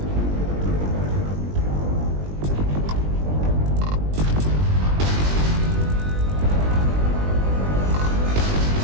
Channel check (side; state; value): left; late; 20 ms